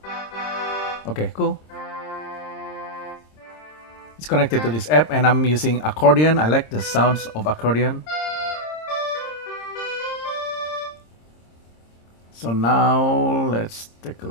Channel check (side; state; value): right; late; 26 ms